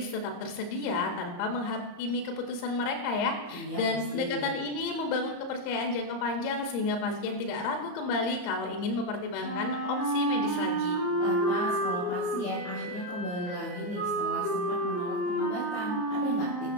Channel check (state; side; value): late; right; 34 ms